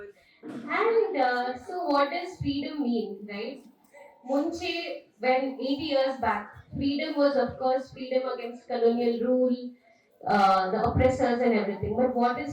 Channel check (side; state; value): both; identical; correlation 1.00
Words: And so, what does freedom mean, right? Munche, when 80 years back, freedom was, of course, freedom against colonial rule, the oppressors and everything. But what